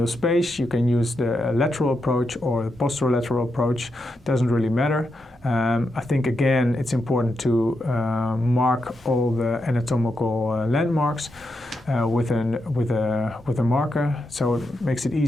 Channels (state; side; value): normal; both; correlation 0.84